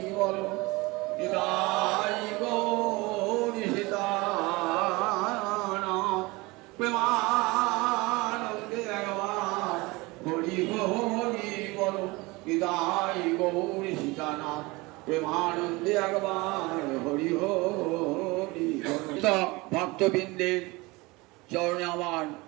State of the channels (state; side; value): quieter; left; 23.5 dB